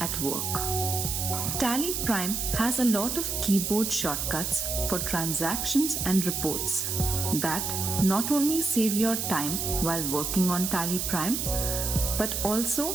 work. TallyPrime has a lot of keyboard shortcuts for transactions and reports that not only save your time while working on TallyPrime, but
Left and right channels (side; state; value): right; noise; hiss, 2 dB below the sound